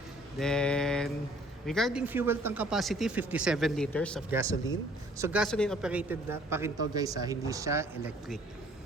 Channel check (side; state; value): both; normal; correlation 0.57